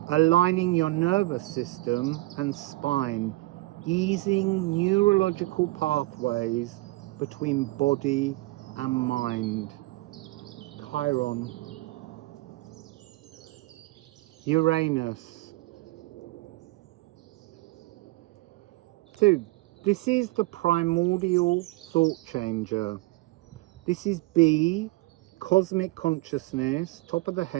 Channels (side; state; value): left; quieter; 20.9 dB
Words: aligning your nervous system and spine, easing neurological pathways between body and mind. Chiron. Uranus. So this is the primordial thought changer. This is B, cosmic consciousness, top of the